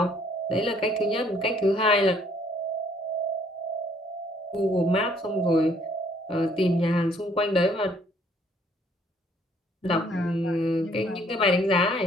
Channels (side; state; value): both; normal; correlation 0.63